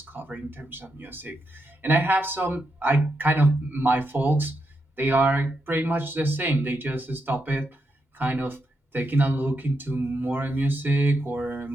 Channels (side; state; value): both; normal; correlation 0.83